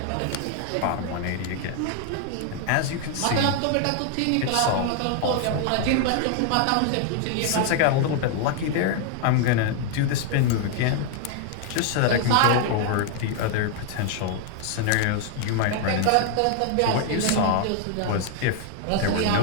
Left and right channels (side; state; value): both; different; correlation 0.00